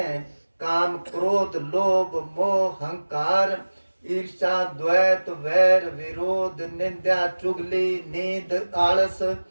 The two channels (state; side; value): inverted; both; correlation -1.00